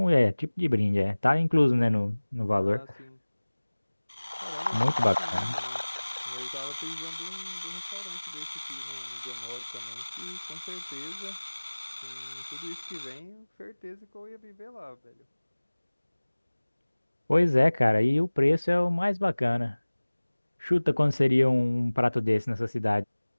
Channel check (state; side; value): inverted; both; correlation -1.00